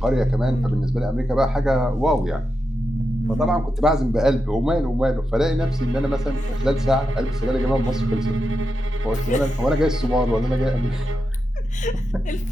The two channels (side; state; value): both; normal; correlation 0.88